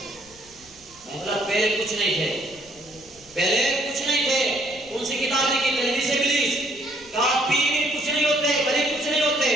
پہلے کچھ نہیں تھے، پہلے کچھ نہیں تھے. کون سی کتاب لکھی؟ تلبیس ابلیس. کہا پیر کچھ نہیں ہوتے، ولی کچھ نہیں ہوتے.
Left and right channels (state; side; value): noise; left; rumble, 26 dB below the sound